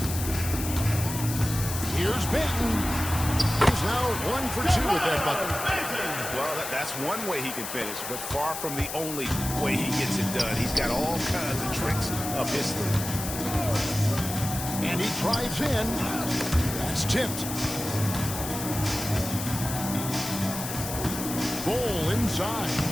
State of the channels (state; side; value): noise; left; hiss, 7 dB below the sound